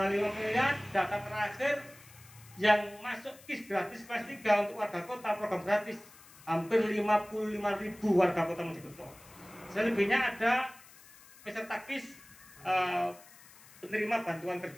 miliar data terakhir yang masuk KIS gratis kelas 3 untuk warga kota, program gratis hampir 55.000 warga kota Mojokerto. Selebihnya ada peserta KIS penerima bantuan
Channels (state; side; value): noise; left; hiss, 22 dB below the sound